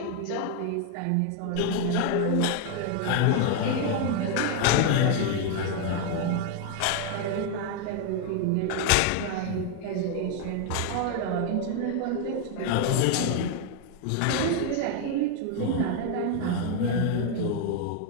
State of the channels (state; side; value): different; both; correlation 0.00